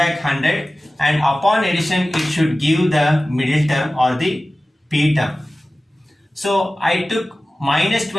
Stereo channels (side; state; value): both; normal; correlation 0.96